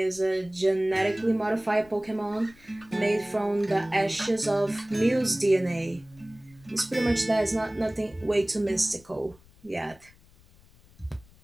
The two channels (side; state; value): left; noise; rumble, 27 dB below the sound